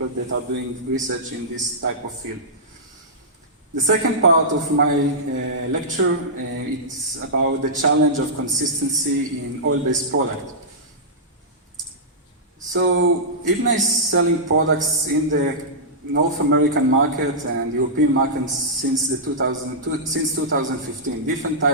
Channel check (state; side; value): normal; both; correlation -0.13